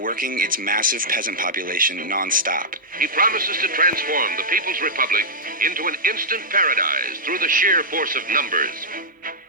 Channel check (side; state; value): both; normal; correlation -0.11